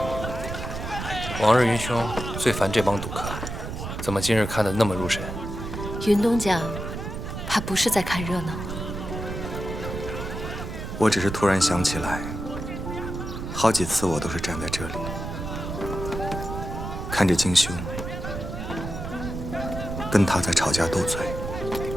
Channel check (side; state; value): right; noise; rumble, 6 dB below the sound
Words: 往日云兄最烦这帮赌客，怎么今日看得那么入神？云东讲，他不是在看热闹。我只是突然想起来，好几次我都是站在这里，看着金兄跟他在吵架斗嘴。